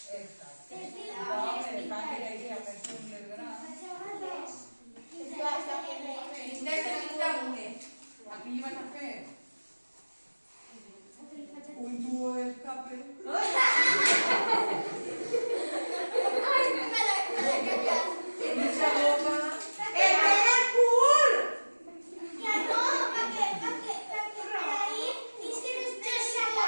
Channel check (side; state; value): both; inverted; correlation -1.00